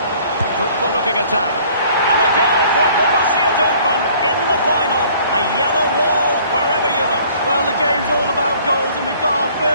Fruitful looking attack. And a goal for Borussia Dortmund in the final. A yellow wall wherever you look. Well, the game's all about goals, and we've got our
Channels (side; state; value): both; inverted; correlation -0.55